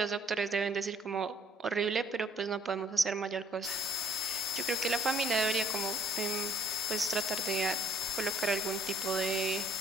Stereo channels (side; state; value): both; normal; correlation 0.62